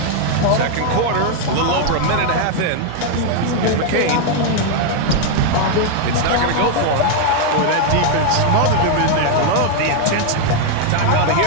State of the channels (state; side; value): different; both; correlation 0.00